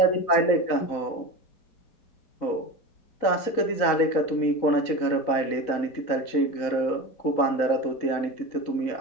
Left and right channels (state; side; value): late; right; 4.0 ms